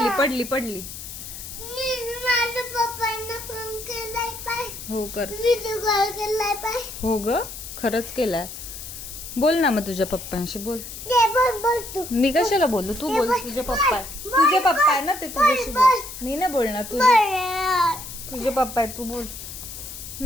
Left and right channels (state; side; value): noise; left; hiss, 11 dB below the sound